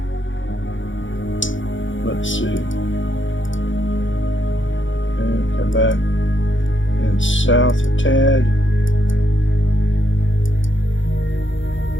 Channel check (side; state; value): right; late; 0.56 ms